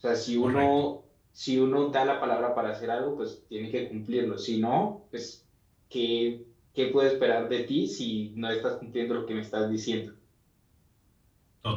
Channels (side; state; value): both; identical; correlation 1.00